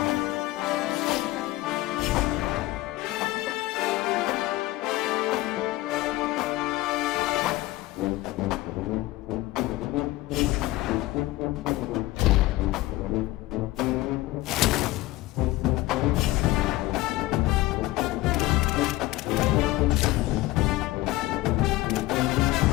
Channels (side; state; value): right; quieter; 18.2 dB